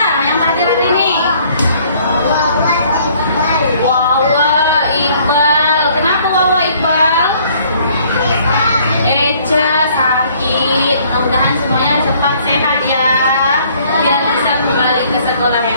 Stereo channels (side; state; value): both; inverted; correlation -0.60